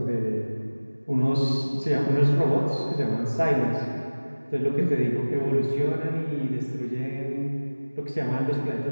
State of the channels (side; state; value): both; inverted; correlation -1.00